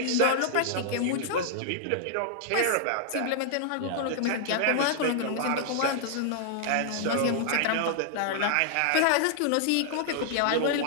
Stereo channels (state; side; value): different; both; correlation -0.01